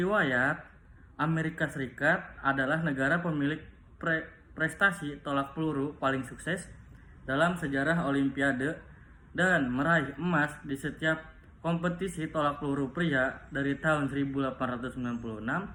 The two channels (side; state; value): both; identical; correlation 1.00